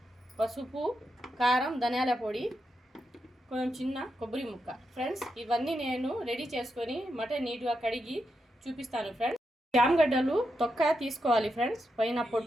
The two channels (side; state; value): both; normal; correlation 0.85